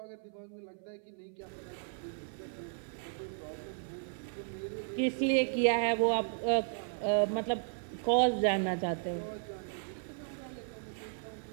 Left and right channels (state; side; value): silent; left; 54 dB below the other